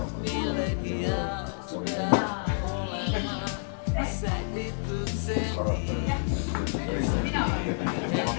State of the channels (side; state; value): right; silent; 59 dB below the other